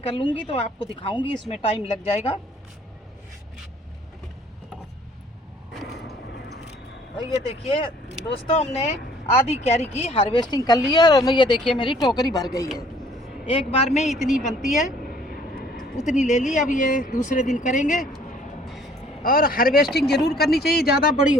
कर लूँगी तो आपको दिखाऊंगी, इसमें टाइम लग जाएगा। और ये देखिए दोस्तों, हमने आधी क्यारी की हार्वेस्टिंग कर ली है और ये देखिए मेरी टोकरी भर गई है। एक बार में इतनी बनती है उतनी ले ली। अब ये दूसरे दिन करेंगे। और हार्वेस्टिंग ज़रूर करनी चाहिए, ज़्यादा बड़ी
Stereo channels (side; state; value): both; normal; correlation 0.58